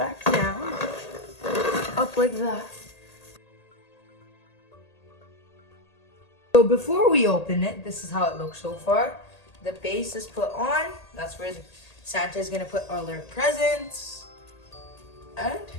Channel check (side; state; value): right; late; 1.8 ms